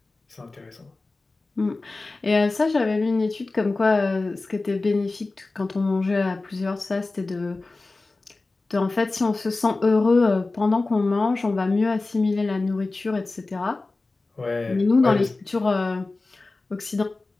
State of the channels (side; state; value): right; quieter; 3.4 dB